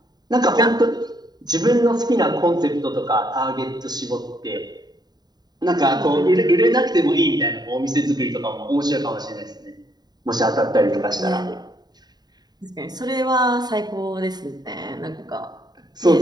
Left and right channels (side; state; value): left; late; 0.20 ms